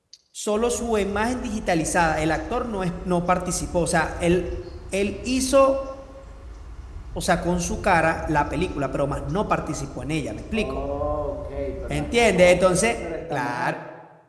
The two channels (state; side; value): identical; both; correlation 1.00